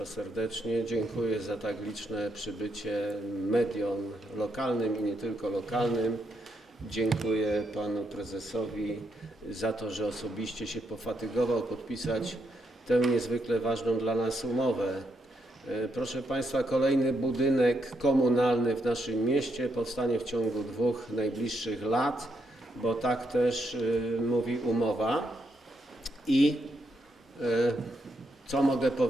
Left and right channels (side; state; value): both; normal; correlation 0.78